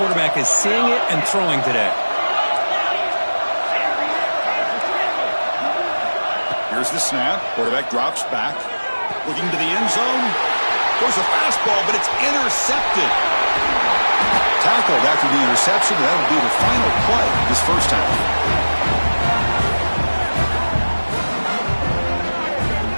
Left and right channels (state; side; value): inverted; both; correlation -1.00